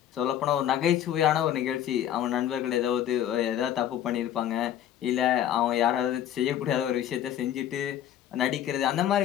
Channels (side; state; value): right; quieter; 10.9 dB